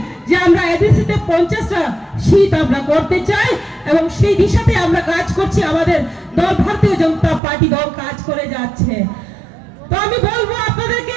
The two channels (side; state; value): left; drops out; at 7.4 s